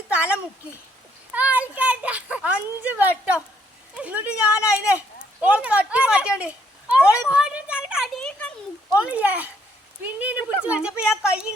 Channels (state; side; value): normal; both; correlation 0.69